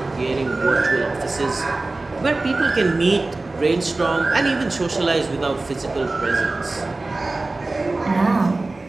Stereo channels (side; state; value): left; quieter; 3.2 dB